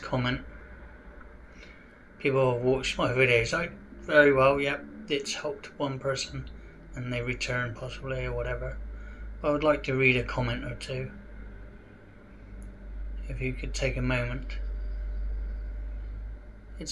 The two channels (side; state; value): both; identical; correlation 1.00